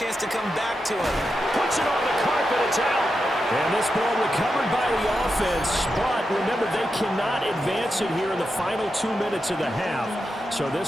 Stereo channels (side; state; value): both; normal; correlation 0.88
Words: to come back to it. Puts it on the carpet, it's out. And this ball recovered by the offense, but remember, they cannot advance it here in the final 2 minutes of the half. So